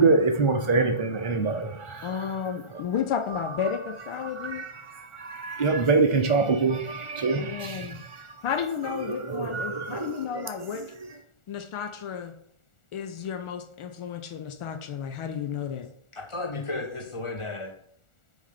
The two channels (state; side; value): late; right; 1.4 ms